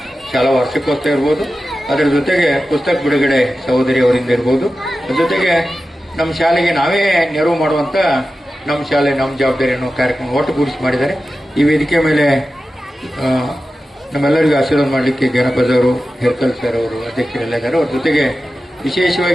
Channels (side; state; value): both; normal; correlation 0.93